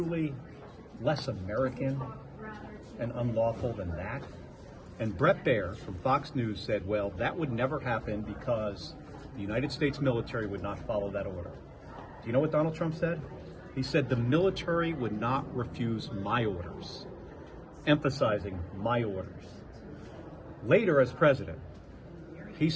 less American and unlawful than that? And Brett Baer from Fox News said, well, that would never happen because the United States military would not follow that order. Do you know what Donald Trump said? He said the military would not refuse my orders, emphasizing my orders. Later, as president, he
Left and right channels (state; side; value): identical; both; correlation 1.00